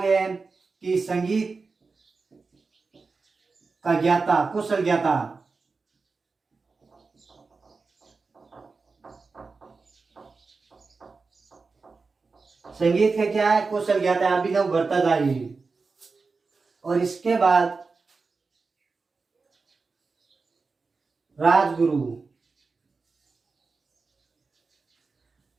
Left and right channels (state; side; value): quieter; left; 4.3 dB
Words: है कि संगीत का ज्ञाता, कुशल ज्ञाता। संगीत का क्या है? कुशल ज्ञाता है, अभिनव भट्टाचार्य। और इसके बाद राजगुरु,